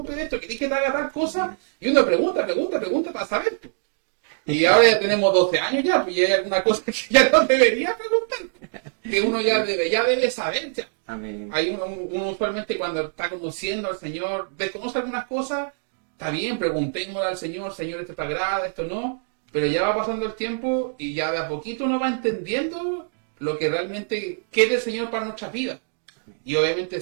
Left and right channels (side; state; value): left; silent; digital silence